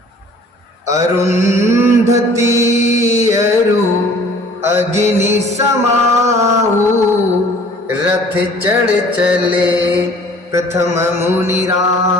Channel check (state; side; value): normal; both; correlation 0.51